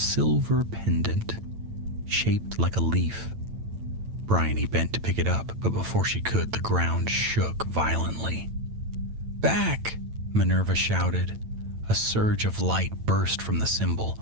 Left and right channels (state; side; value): late; left; 9.0 ms